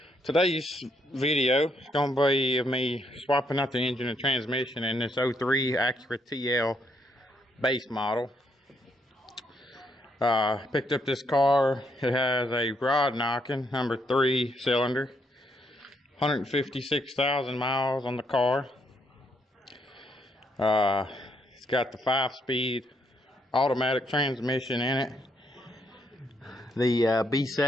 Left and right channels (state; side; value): normal; both; correlation 0.74